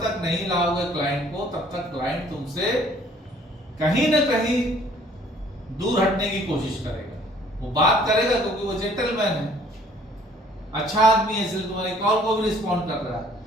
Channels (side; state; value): both; normal; correlation 0.58